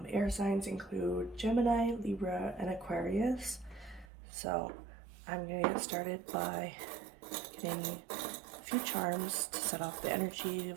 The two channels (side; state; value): left; drops out; at 4.0 s